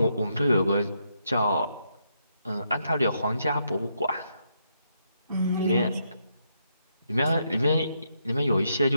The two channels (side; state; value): both; inverted; correlation -0.78